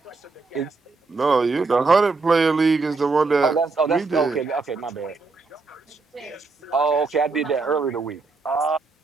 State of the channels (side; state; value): left; quieter; 4.0 dB